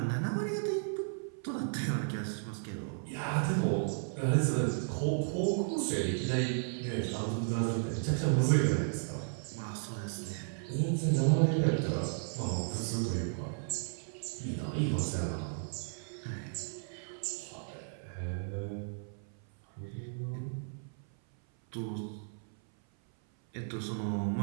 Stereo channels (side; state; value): left; silent; 55 dB below the other